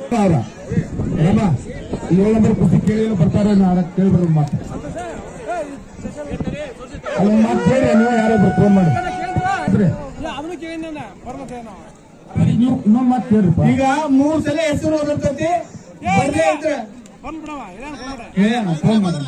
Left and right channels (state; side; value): identical; both; correlation 1.00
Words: ರಾಮ 7 ನಂಬರ್ ಕುಸ್ತಿ ಕೇಳಿ ಬರ್ತಾರೆ ಕೇಳ್ಬಾರ್ದು ಮಾತು ಅಲ್ಲ ಮಾತು ಕೇಳಿ ನೀವು ಯಾರೊಬ್ರು ಫೋನ್ ಮಾಡಿ ಇನ್ನೊಂದು ಮಾತು ಕೇಳ್ರಿಪ್ಪ. ಈಗ 3 ಸಲ ಹೆಸರು ಓದಿರ್ತೈತಿ ಫೋನ್ ಮಾಡಿ